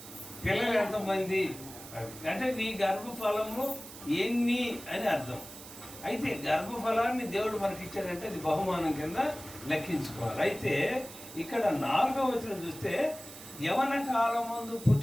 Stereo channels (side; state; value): right; noise; hiss, 15 dB below the sound